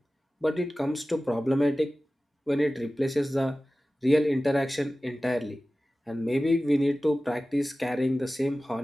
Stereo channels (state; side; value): normal; both; correlation 0.96